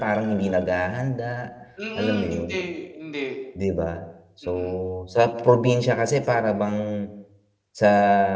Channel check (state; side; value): identical; both; correlation 1.00